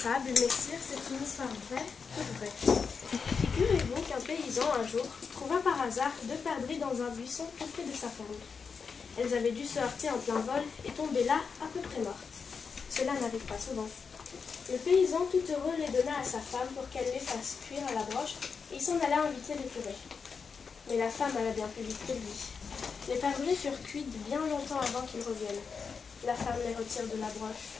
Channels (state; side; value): quieter; right; 5.6 dB